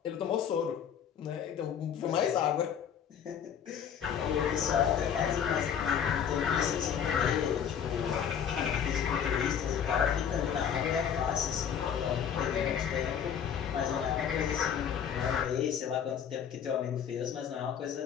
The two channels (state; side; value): quieter; right; 8.2 dB